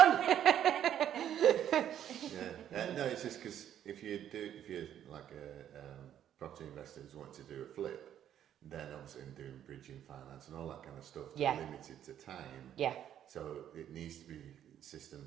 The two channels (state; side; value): quieter; left; 10.4 dB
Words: No, it's just because if you're like a property investor who's wanting to do a flip, then obviously doing bridging finance and all that kind of stuff, Yeah. limited to time. Yeah. So it needs to be